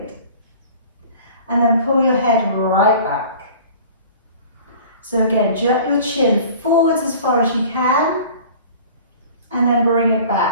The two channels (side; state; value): both; inverted; correlation -0.44